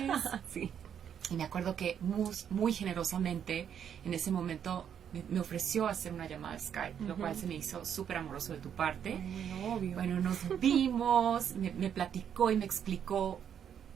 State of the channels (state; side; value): quieter; left; 8.6 dB